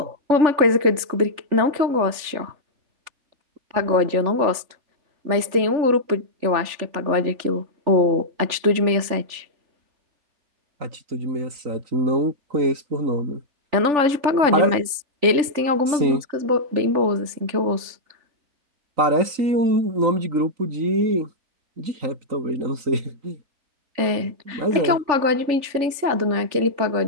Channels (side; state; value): left; late; 3.4 ms